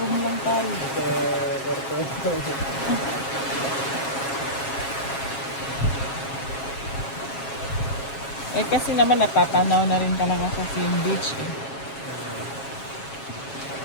lang tayo. Sa kwarto. Eh kasi naman napapanaw na rin talaga sa Sim Beach eh.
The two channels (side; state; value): right; late; 7.3 ms